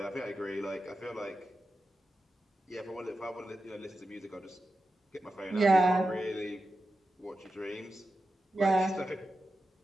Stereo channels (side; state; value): both; normal; correlation 0.91